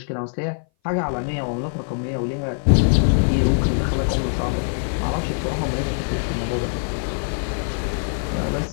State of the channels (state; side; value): silent; right; 58 dB below the other